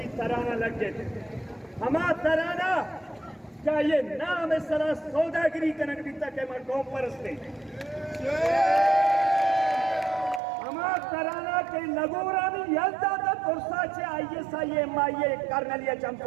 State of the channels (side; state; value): left; drops out; at 10.4 s